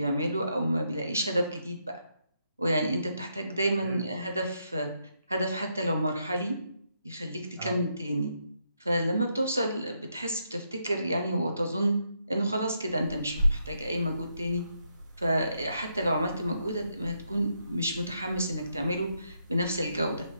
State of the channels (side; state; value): both; inverted; correlation -0.78